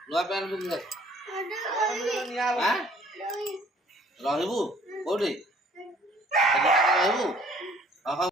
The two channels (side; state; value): both; normal; correlation 0.57